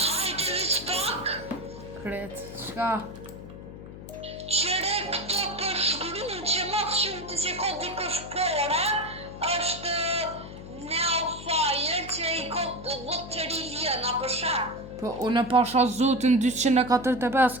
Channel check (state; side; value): noise; left; hum, 13 dB below the sound